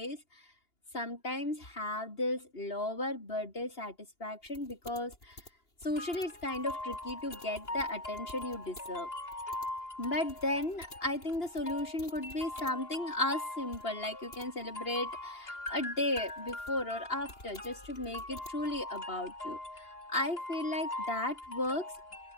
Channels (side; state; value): right; late; 2.9 ms